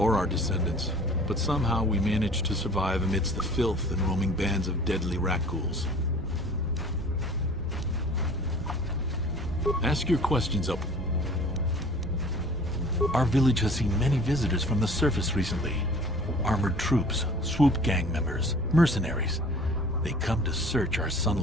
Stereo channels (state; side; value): normal; both; correlation 0.47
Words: our descendants, but somehow we managed to survive amidst the filth and roaming bands of deadly rat ghouls. Ask your questions up. Our village has seen many visitors from the surface recently. Armored troops, swoop gang members, mercenaries. They come to search our